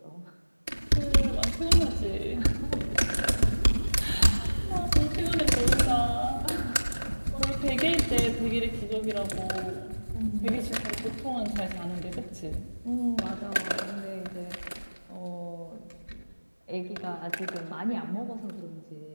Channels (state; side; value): inverted; both; correlation -1.00